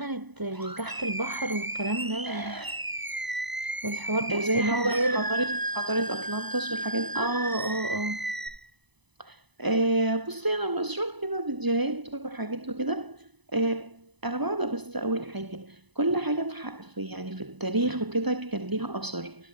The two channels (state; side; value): late; left; 1.0 ms